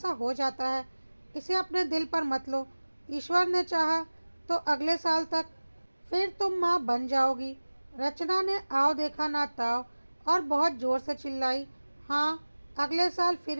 हो जाता है, इसे अपने दिल पर मत लो, ईश्वर ने चाहा तो अगले साल तक फिर तुम माँ बन जाओगी। रचना ने आओ देखा ना ताओ और बहुत ज़ोर से चिल्लाई, हाँ, अगले साल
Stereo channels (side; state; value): both; inverted; correlation -1.00